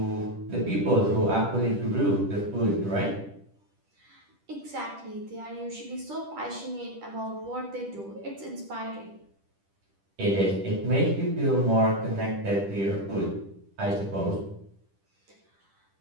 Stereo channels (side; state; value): left; late; 10 ms